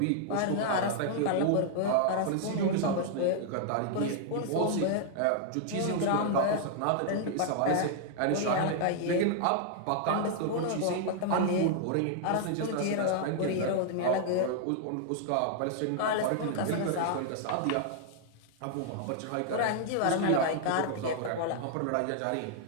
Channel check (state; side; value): different; both; correlation -0.01